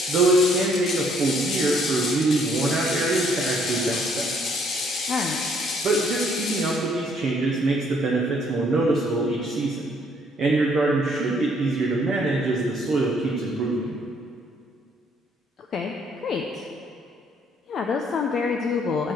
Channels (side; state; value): both; normal; correlation 0.65